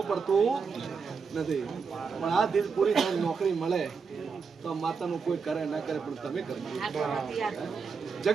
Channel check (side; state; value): left; quieter; 5.4 dB